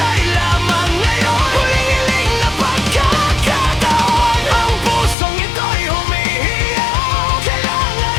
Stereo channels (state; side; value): drops out; right; at 5.2 s